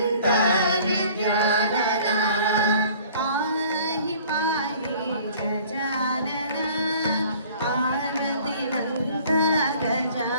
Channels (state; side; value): inverted; both; correlation -0.51